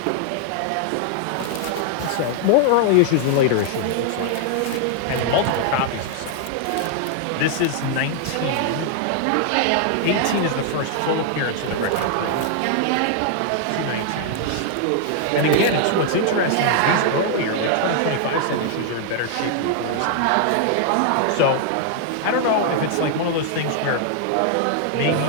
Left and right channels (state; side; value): different; both; correlation 0.00